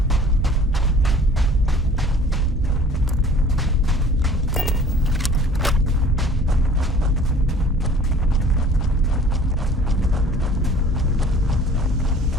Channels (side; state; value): both; normal; correlation 0.50